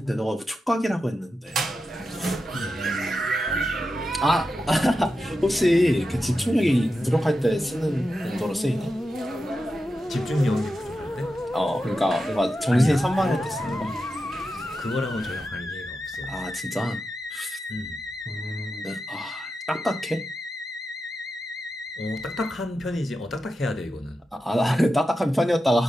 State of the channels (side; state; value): both; normal; correlation 0.90